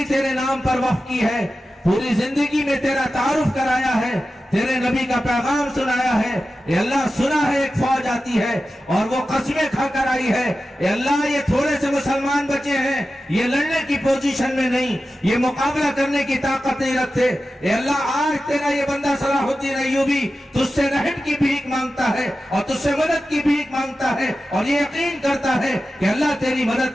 تیرے نام پر وقف کی ہے، پوری زندگی میں تیرا تعارف کرایا ہے، تیرے نبی کا پیغام سنایا ہے، اے اللہ سنا ہے ایک فوج آتی ہے اور وہ قسمیں کھا کر آئی ہے، اے اللہ یہ تھوڑے سے مسلمان بچے ہیں، یہ لڑنے کی پوزیشن میں نہیں، یہ مقابلہ کرنے کی طاقت نہیں رکھتے، اے اللہ آج تیرا یہ بندہ صلاح الدین ایوبی تجھ سے رحم کی بھیک مانگتا ہے اور تجھ سے مدد کی بھیک مانگتا ہے، اور یہ یقین کرتا ہے کہ اللہ تیری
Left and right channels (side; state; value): both; normal; correlation 0.93